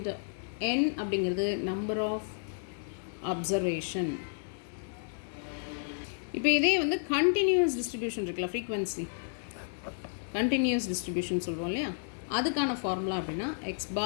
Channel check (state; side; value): silent; right; 57 dB below the other